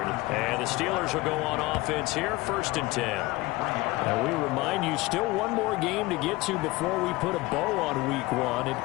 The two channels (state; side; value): quieter; right; 20.7 dB